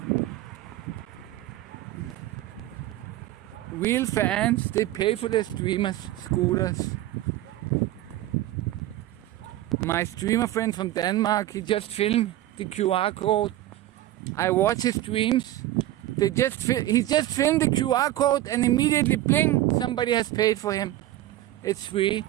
Real fans, they pay for their streamers' scooters. My streamer friend from Denmark, he just filmed the QR code. I watch his streams. He just filmed the QR code and immediately bling, somebody has paid for him. It's free.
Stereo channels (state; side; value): quieter; left; 14.6 dB